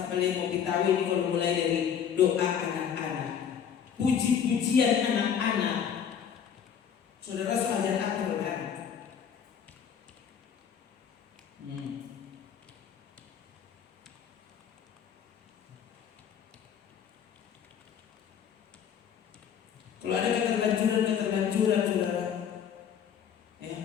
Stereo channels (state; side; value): quieter; right; 8.1 dB